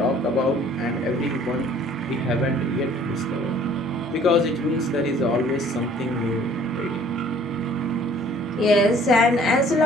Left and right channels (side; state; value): both; normal; correlation 0.55